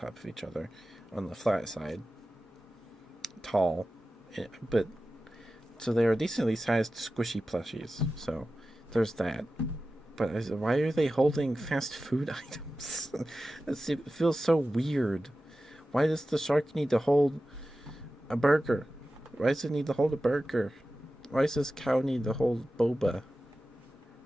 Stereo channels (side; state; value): both; normal; correlation 0.94